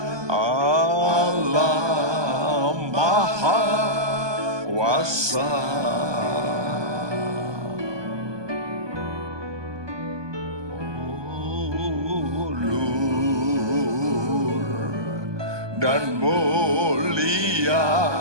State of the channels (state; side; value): late; left; 1.2 ms